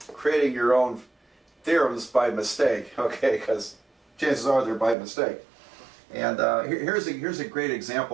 creating your own theorems by mistake, okay? Because chances are they're by mistake. And here's a great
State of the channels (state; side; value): drops out; left; at 5.0 s